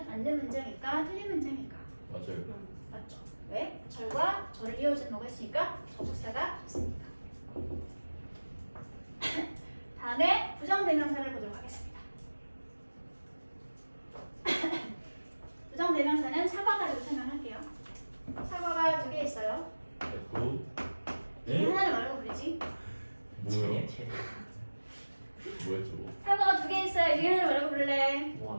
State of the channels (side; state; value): both; inverted; correlation -1.00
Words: 맞는 문장일까 틀린 문장일까? 맞아요. 맞죠? 왜? 절과 절을 이어주는 뭐가 있으니까 접속사가 있으니까. 다음에 부정대명사를 보도록 하겠습니다. 부정대명사는 사과 가지고 설명할게요. 사과가 두 개 있어요. F. 이 하나를 뭐라고 부르지? 뭐야? 뭐야 저거? 사과가 두 개 있어요. 이 하나를 뭐라고 부를래? 뭐